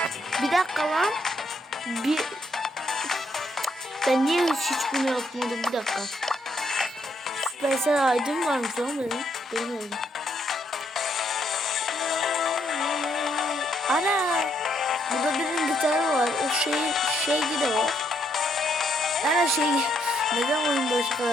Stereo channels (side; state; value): both; normal; correlation 0.74